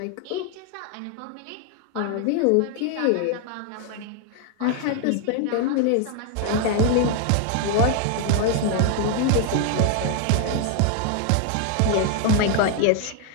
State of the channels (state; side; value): different; both; correlation 0.00